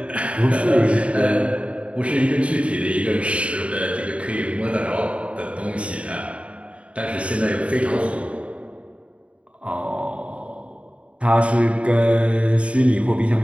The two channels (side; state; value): left; late; 0.062 ms